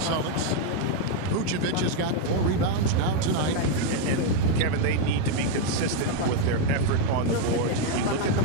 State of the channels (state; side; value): different; both; correlation 0.01